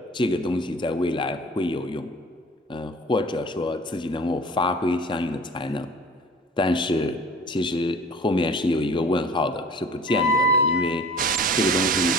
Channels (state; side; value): normal; both; correlation 0.44